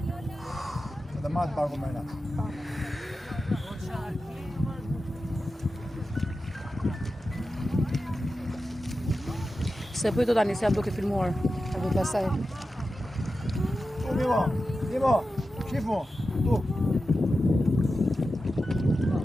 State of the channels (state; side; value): normal; both; correlation 0.92